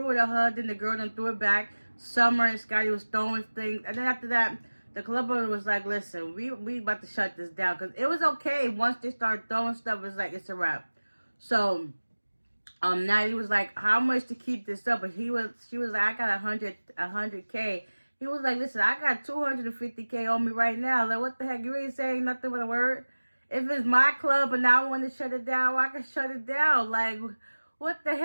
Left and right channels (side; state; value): both; inverted; correlation -1.00